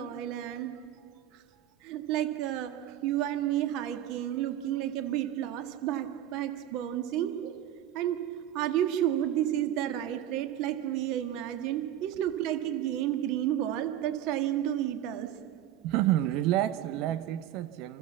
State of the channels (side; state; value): left; quieter; 11.9 dB